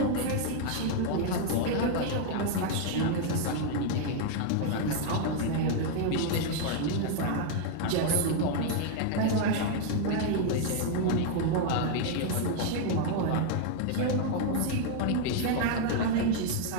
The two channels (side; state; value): both; different; correlation 0.00